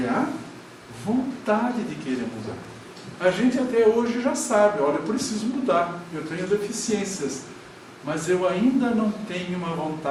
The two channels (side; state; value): both; identical; correlation 1.00